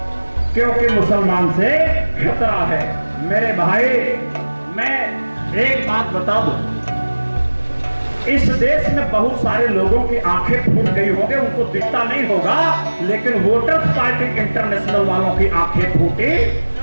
क्योंकि मुसलमान से खतरा है। मेरे भाई, मैं एक बात बता दूं, इस देश में बहुत सारे लोगों की आंखें फूट गई होंगी, उनको दिखता नहीं होगा, लेकिन वोटर्स पार्टी इंटरनेशनल वालों की आंखें फूटी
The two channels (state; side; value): inverted; both; correlation -1.00